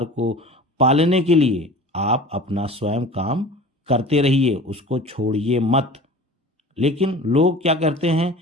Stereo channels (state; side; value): normal; both; correlation 0.39